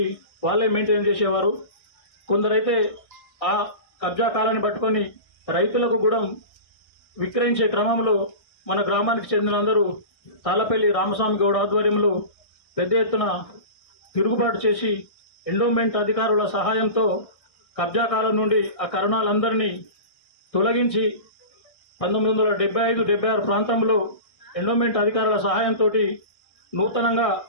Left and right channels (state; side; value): late; right; 1.6 ms